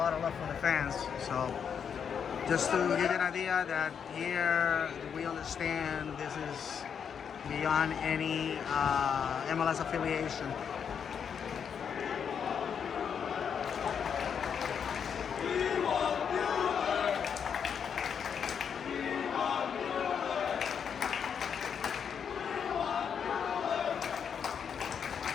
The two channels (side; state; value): right; quieter; 7.3 dB